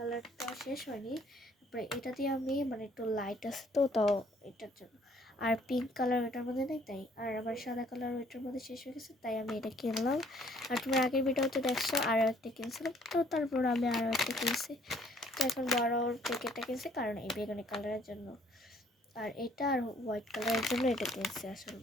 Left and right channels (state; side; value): normal; both; correlation 0.61